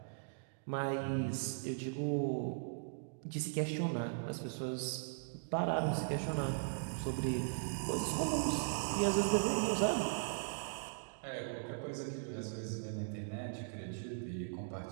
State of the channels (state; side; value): silent; left; digital silence